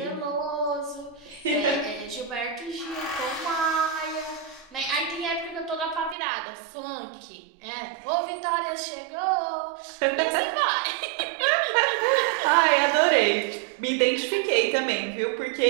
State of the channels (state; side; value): drops out; left; at 6.2 s